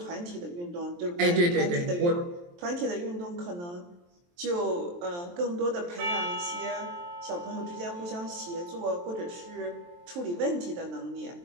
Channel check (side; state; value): left; late; 23 ms